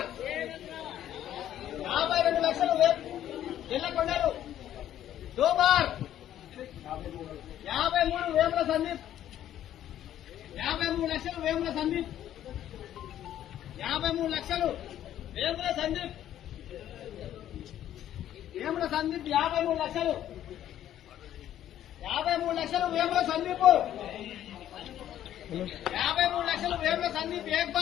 52 లక్షలు జల్లకొండలు దో బార్ 53 వేముల సందీప్ 53 లక్షలు వేముల సందీప్ 53 లక్షలు వేముల సందీప్ 53 లక్షలు 53 లక్షలు వేముల సందీప్ 53 లక్షలు వేముల సందీప్ ఏక్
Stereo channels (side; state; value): right; quieter; 11.6 dB